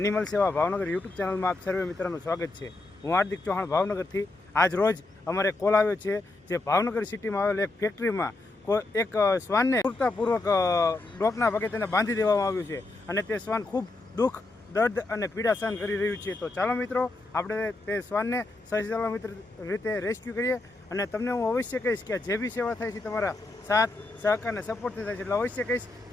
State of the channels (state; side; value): quieter; right; 3.0 dB